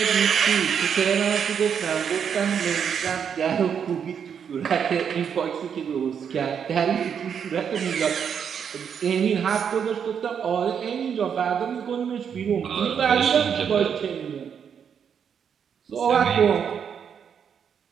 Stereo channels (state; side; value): quieter; left; 7.6 dB